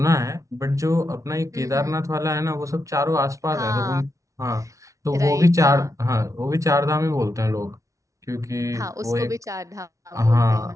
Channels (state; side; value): late; left; 0.15 ms